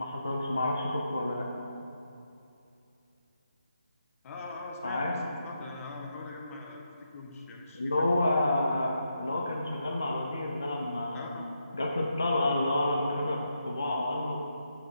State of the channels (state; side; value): inverted; both; correlation -0.82